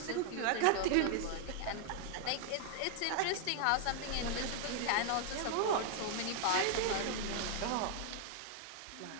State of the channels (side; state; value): both; different; correlation 0.00